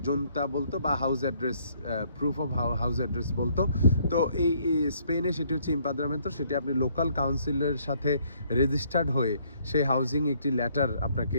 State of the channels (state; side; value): inverted; both; correlation -0.66